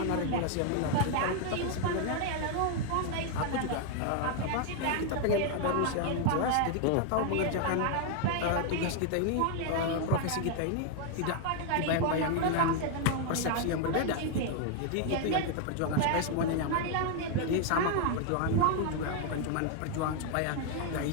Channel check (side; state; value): both; different; correlation 0.00